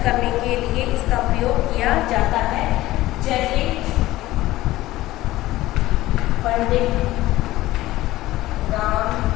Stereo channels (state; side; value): quieter; right; 16.7 dB